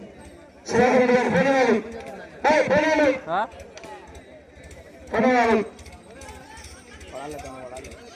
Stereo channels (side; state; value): both; identical; correlation 1.00